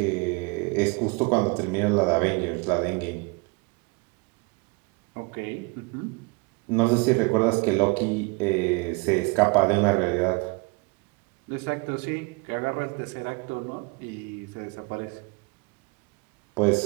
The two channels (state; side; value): quieter; left; 29.1 dB